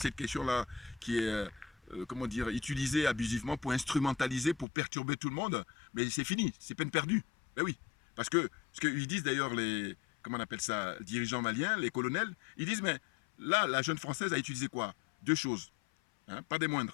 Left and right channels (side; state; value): right; drops out; at 4.7 s